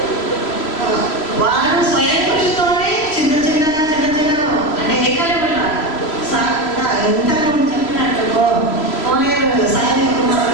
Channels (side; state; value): right; late; 3.0 ms